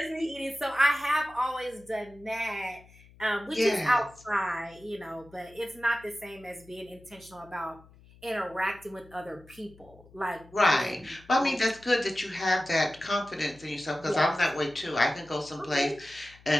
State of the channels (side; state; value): left; noise; hum, 24 dB below the sound